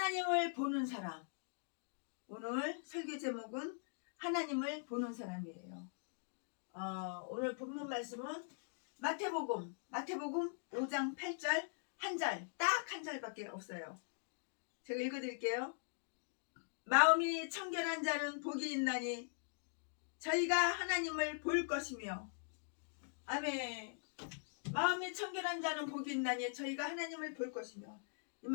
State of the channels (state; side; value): silent; right; digital silence